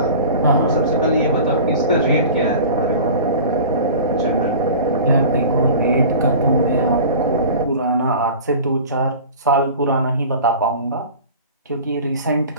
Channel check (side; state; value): both; inverted; correlation -0.38